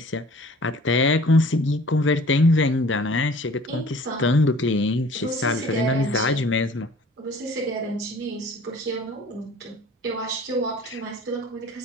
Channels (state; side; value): normal; both; correlation 0.49